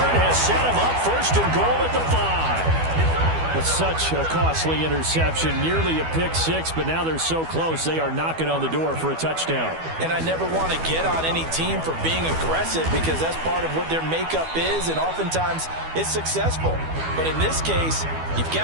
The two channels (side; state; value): left; late; 12 ms